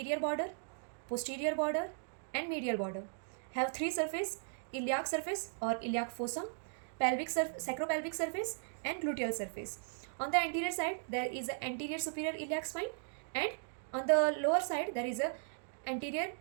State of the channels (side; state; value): left; silent; digital silence